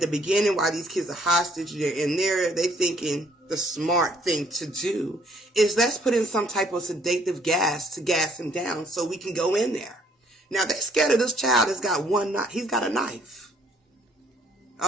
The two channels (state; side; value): normal; both; correlation 0.64